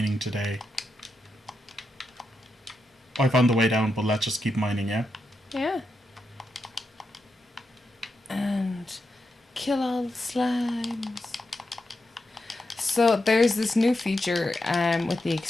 today. I found the way down, but let's just keep mining, yeah? Yeah. And kill all the slimes. So there's this new feature with the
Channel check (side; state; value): both; normal; correlation 0.86